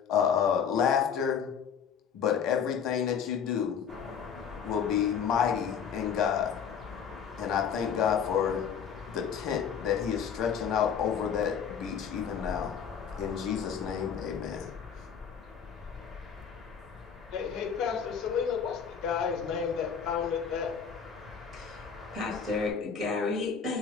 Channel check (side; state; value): right; quieter; 7.2 dB